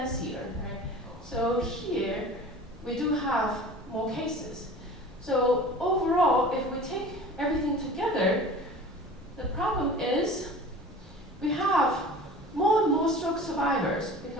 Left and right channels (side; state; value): both; normal; correlation 0.40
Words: right? So here, we do have more cases. So overall, if we take everything together, the problem is we have more and more stroke survivors